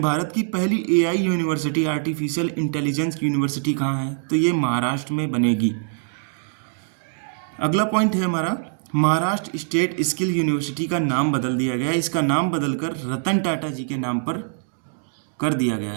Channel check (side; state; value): left; silent; digital silence